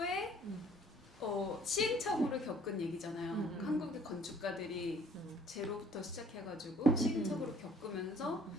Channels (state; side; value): normal; both; correlation 0.58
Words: 시행착오를 겪은 얘기잖아요. 한국의 건축가들이 제로부터 시작해가지고 시행착오를 겪으면서